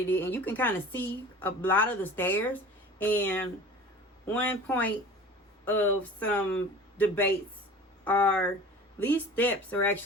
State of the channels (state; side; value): normal; both; correlation 0.40